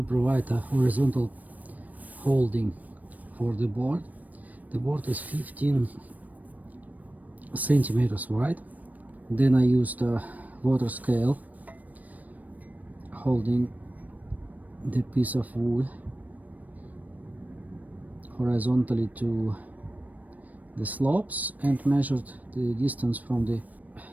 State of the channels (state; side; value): late; left; 0.076 ms